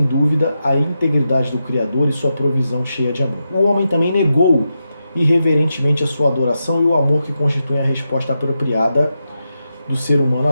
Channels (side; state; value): both; inverted; correlation -0.87